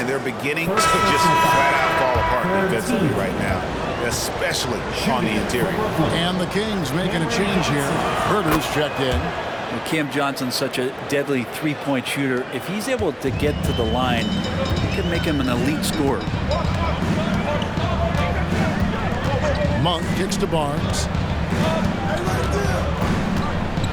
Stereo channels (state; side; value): identical; both; correlation 1.00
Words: they're beginning to just flat out fall apart defensively right now, especially on the interior. And the Kings making a change here. Herter's checked in. And Cam Johnson's such a deadly 3-point shooter. If he's able to get to the line, it can make him an elite scorer. Monk kicks to Barnes.